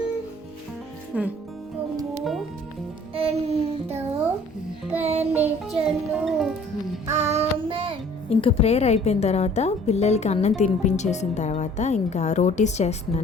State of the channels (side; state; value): both; normal; correlation 0.53